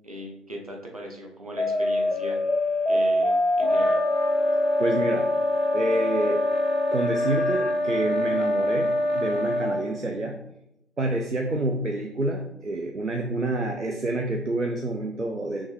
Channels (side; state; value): both; normal; correlation 0.76